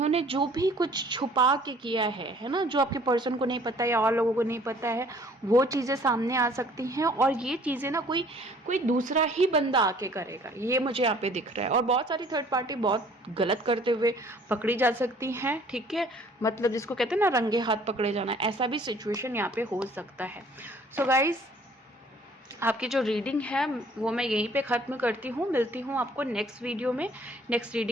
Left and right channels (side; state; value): both; normal; correlation 0.55